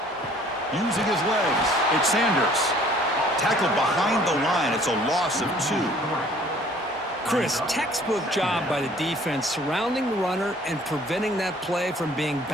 Using his legs, it's Sanders. Tackled behind the line. It's a loss of 2. Chris, textbook job by the defense surrounding the runner and preventing that play from being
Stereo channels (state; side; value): normal; both; correlation 0.55